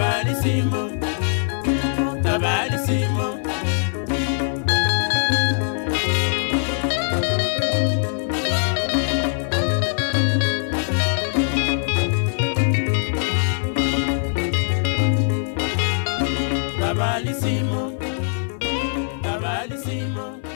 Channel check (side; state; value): right; silent; 60 dB below the other